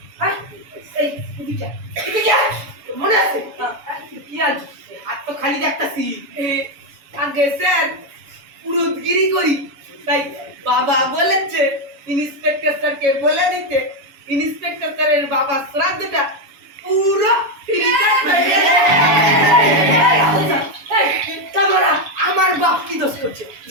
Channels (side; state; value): left; late; 7.0 ms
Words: হ্যাঁ এই এদিকে এদিকে মনে আছে কি আজ হাত তো খালি দেখতাছি আগে স্যার পুরোদগিরি করি তাই বাবা বলেছে ইন্সপেক্টর স্যারকে বলে দিতে ইন্সপেক্টর স্যারের বাবা শ্রাদ্ধটা পুরো তোমরা আমার বাপ কি দোষ করছে